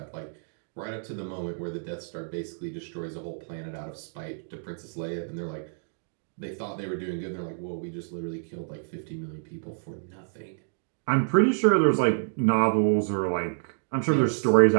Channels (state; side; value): silent; left; digital silence